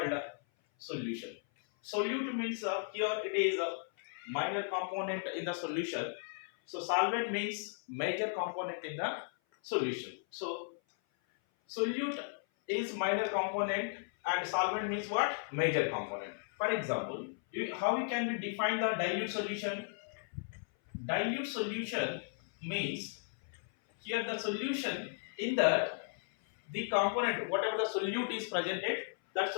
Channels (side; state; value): right; silent; 54 dB below the other